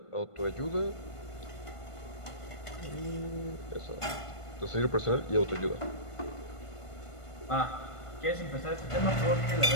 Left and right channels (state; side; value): late; right; 1.5 ms